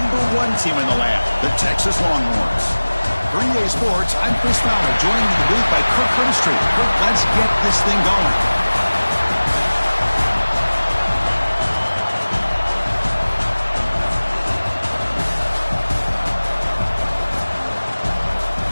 #1 team in the land, the Texas Longhorns. For EA Sports, I'm Chris Fowler, joined in the booth by Kirk Herbstreit. Kirk, let's get this thing going.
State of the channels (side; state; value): both; inverted; correlation -1.00